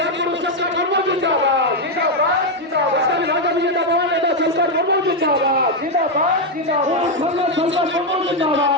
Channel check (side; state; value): both; normal; correlation 0.03